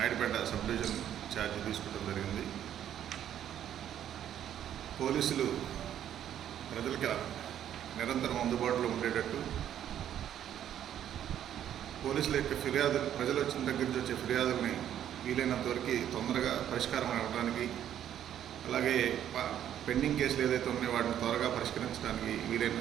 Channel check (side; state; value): left; quieter; 10.5 dB